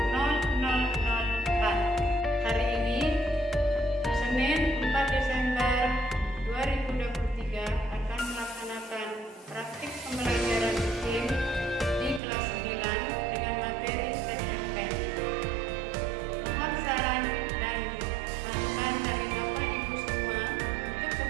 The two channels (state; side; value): drops out; left; at 12.2 s